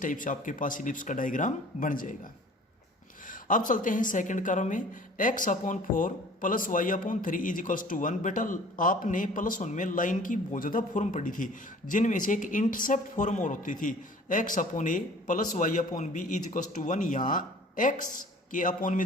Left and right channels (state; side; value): normal; both; correlation 0.49